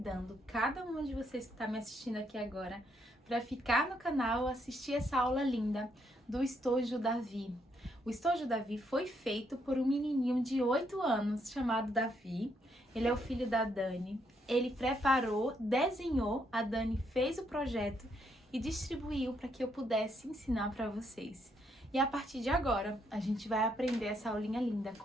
cada uma de vocês que tá me assistindo aqui agora para ficar no canal assistir essa aula linda do Estojo Davi. O Estojo Davi foi feito por um menininho de 8 anos chamado Davi. Ele é o filho da Dani. Ele preparou, desenhou, a Dani fez o projeto e distribuiu para que eu pudesse ensinar para vocês. E a partir de agora, a gente vai aprender essa aulinha linda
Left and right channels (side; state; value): both; normal; correlation 0.75